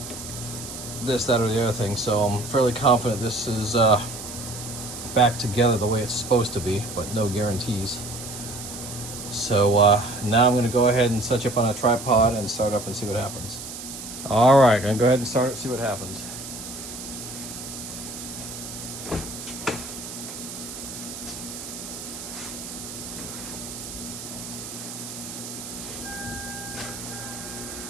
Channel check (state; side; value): noise; right; hiss, 10 dB below the sound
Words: this, that, or the other thing. So I'm fairly confident this is back together the way it's supposed to be, but no guarantees. So now I'm going to go ahead and set you up on a tripod and start up and see what happens. All right, going to go ahead and start it, see what happens.